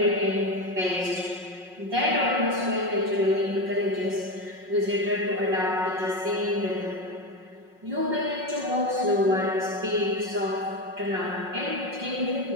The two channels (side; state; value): left; late; 5.5 ms